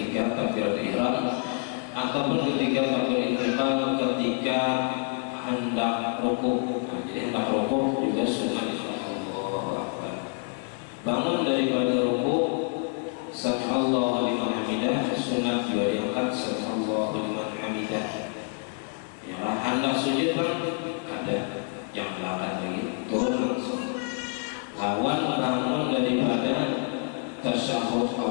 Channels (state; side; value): quieter; right; 39.5 dB